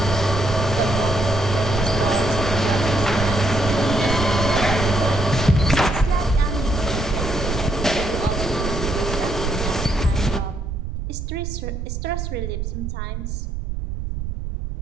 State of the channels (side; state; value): right; noise; rumble, 5 dB below the sound